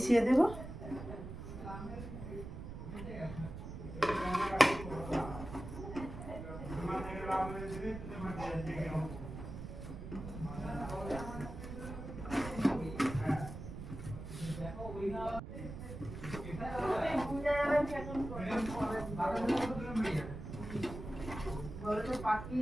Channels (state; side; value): noise; right; rumble, 9 dB below the sound